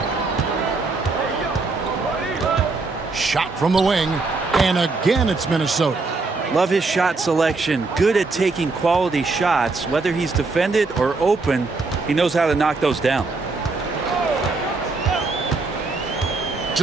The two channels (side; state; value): left; quieter; 3.8 dB